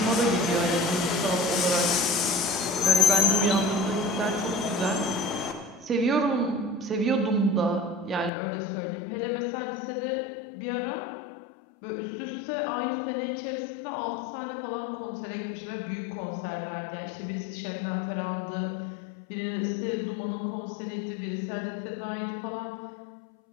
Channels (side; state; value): right; drops out; at 8.3 s